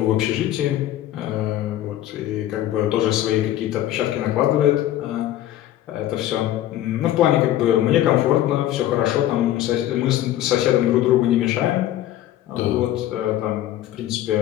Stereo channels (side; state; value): right; quieter; 13.1 dB